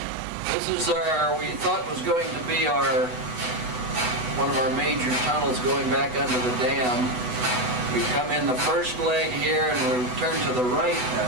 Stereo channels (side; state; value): left; late; 8.1 ms